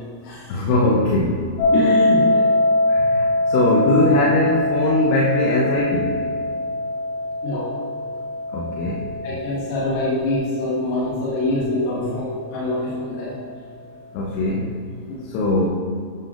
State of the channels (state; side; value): late; right; 35 ms